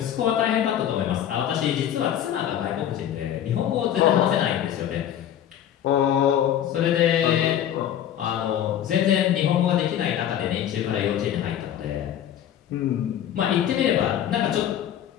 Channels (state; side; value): quieter; right; 10.5 dB